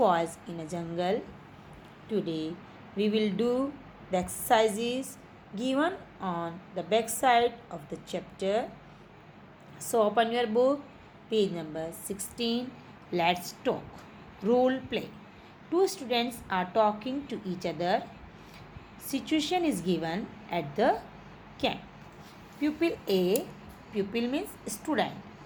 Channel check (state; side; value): identical; both; correlation 1.00